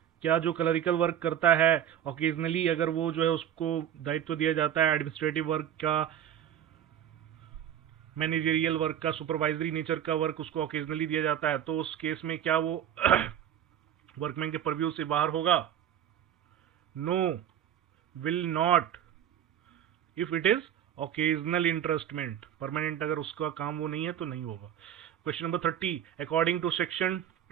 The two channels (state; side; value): quieter; left; 10.2 dB